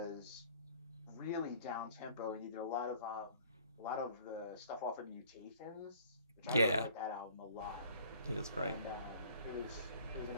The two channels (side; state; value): both; inverted; correlation -0.55